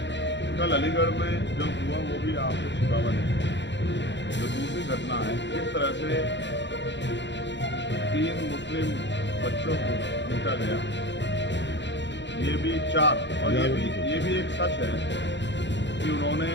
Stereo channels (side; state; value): right; late; 0.52 ms